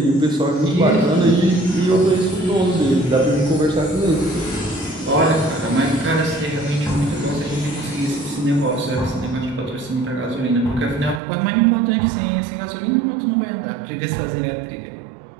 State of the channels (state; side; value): drops out; left; at 11.2 s